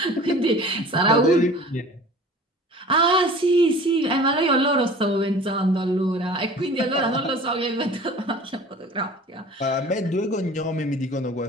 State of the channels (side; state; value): both; normal; correlation 0.43